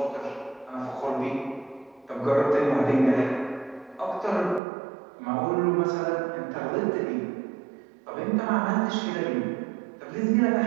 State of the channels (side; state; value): left; drops out; at 4.6 s